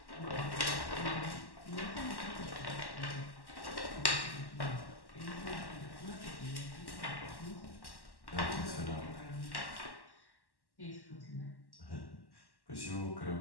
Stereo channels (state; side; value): late; right; 1.1 ms